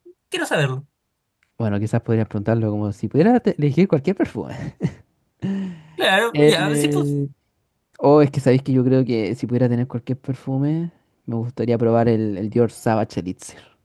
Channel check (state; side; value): identical; both; correlation 1.00